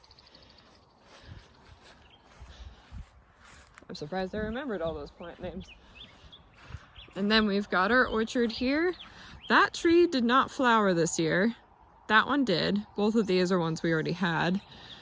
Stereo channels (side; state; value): both; identical; correlation 1.00